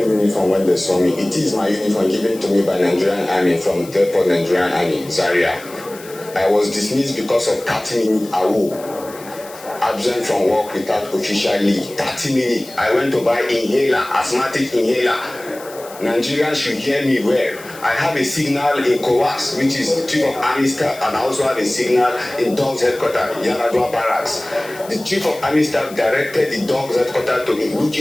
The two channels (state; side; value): noise; left; hiss, 19 dB below the sound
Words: uniform when they saw me. It is my uniform given to me by Nigerian Army from Depot Nigerian Army, Zaria. I was dismissed because of 30 minutes awo. Absent from work without official leave. 30 minutes. I went to buy inhaler, asthmatic inhaler. Nigerians should hear me well. I have a signal in Kowas, which is Chief of Army Staff, and I also have a signal in Dogs Headquarters, Yaladua Barracks. The Chief of Army Staff directed the Dogs Headquarters to look